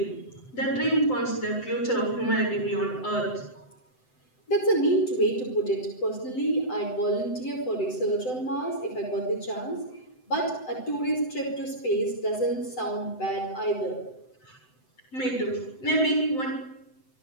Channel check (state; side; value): late; right; 7.8 ms